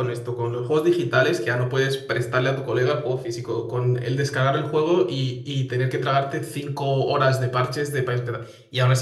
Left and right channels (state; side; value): identical; both; correlation 1.00